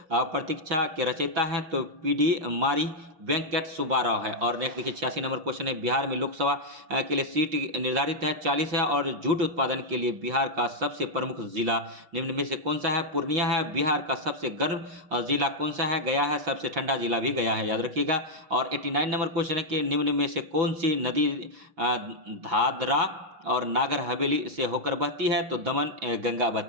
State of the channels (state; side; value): late; left; 6.0 ms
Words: प्रतीक्षा के रचयिता हैं, तो पीडी मारी वेंकट सुब्बाराव है। और नेक्स्ट देखिए, 86 नंबर क्वेश्चन है बिहार में लोकसभा के लिए सीट निर्धारित है 40 है। और जूट उत्पादन के लिए बिहार का सबसे प्रमुख जिला निम्न में से कौन सा है? पूर्णिया है। बिहार का सबसे गर्म जिला कौन सा है? गया है। सबसे ठंडा जिला भी गया है, याद रखिएगा। और 89 नंबर क्वेश्चन है कि निम्न में से कौन सी नदी दादरा और नागर हवेली से होकर बहती है? तो दमन गंगा